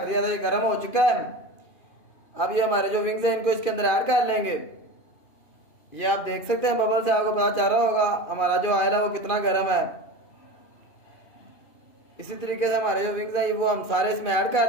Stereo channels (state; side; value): late; right; 2.5 ms